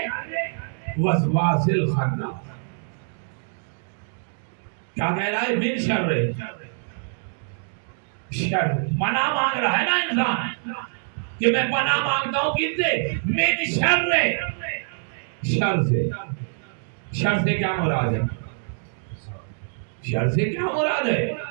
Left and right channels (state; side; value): silent; left; digital silence